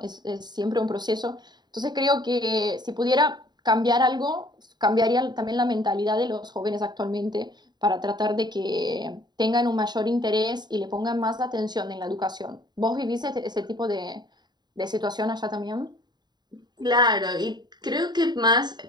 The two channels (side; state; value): left; late; 0.21 ms